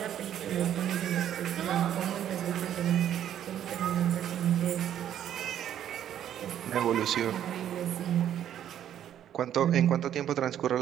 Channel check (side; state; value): left; quieter; 10.5 dB